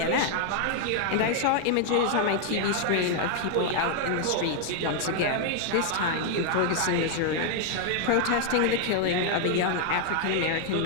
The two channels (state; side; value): different; both; correlation 0.00